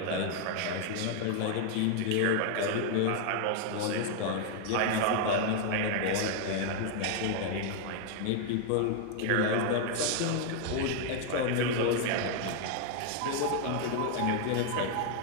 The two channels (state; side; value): different; both; correlation 0.00